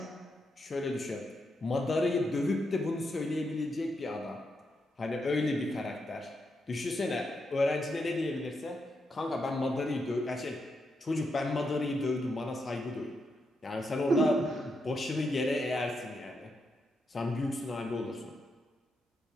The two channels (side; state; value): both; normal; correlation 0.83